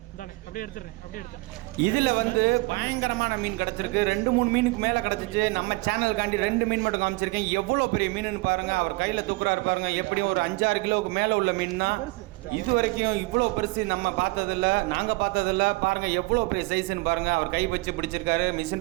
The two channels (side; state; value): left; quieter; 23.9 dB